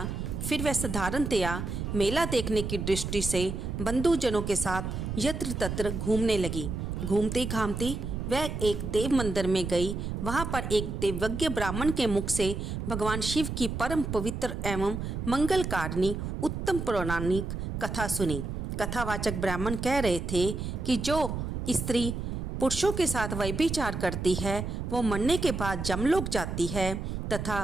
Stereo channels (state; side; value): noise; right; rumble, 4 dB below the sound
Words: फिर वह साधारणतया मेला देखने की दृष्टि से बंधुजनों के साथ यत्र तत्र घूमने लगी। घूमती घामती वह एक देव मंदिर में गई। वहां पर एक देवज्ञ ब्राह्मण के मुख से भगवान शिव की परम पवित्र एवं मंगलकारिणी उत्तम पौराणिक कथा सुनी। कथावाचक ब्राह्मण कह रहे थे कि जो स्त्री पुरुषों के साथ व्यभिचार करती है वो मरने के बाद जमलोक जाती है तथा